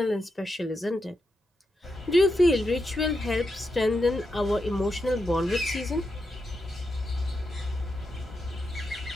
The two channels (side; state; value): both; normal; correlation 0.86